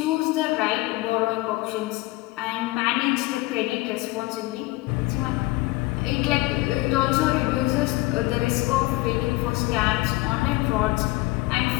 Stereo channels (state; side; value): quieter; right; 20.9 dB